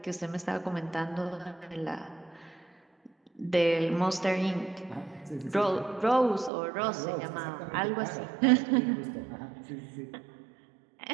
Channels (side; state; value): left; drops out; at 6.5 s